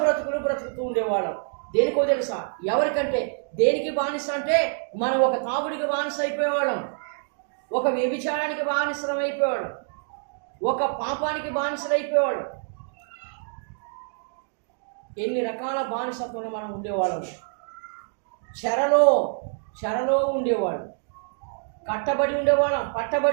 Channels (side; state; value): left; silent; digital silence